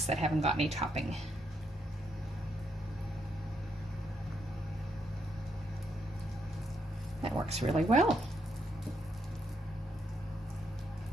that haven't got any topping. That works really well.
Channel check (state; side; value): normal; both; correlation 0.78